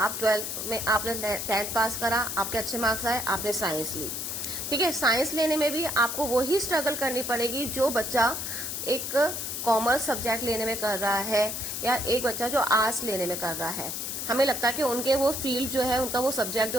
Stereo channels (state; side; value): noise; left; hiss, 4 dB below the sound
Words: 12th में आपने 10th पास करा, आपके अच्छे मार्क्स आए, आपने साइंस ली, ठीक है। साइंस लेने में भी आपको वही स्ट्रगल करनी पड़ेगी जो बच्चा एक कॉमर्स सब्जेक्ट लेने में कर रहा है या एक बच्चा जो आर्ट्स लेने में कर रहा है। हमें लगता है कि उनके वो फील्ड जो है, उनका वो सब्जेक्ट